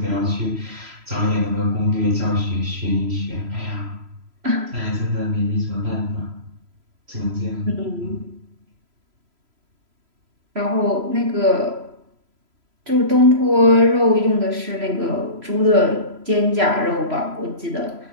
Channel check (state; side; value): late; left; 3.0 ms